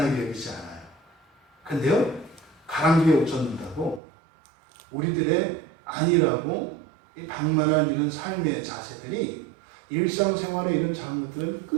여기지 않아요. 근데요, 가랑비에 옷 젖는다고 우리들의 아니라고 이 방만한 이런 삶의 자세들이 일상생활의 이런 작은 것들은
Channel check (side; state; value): left; drops out; at 4.0 s